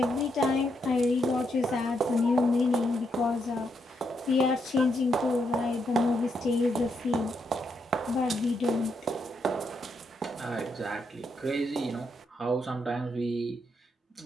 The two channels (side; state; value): both; normal; correlation 0.79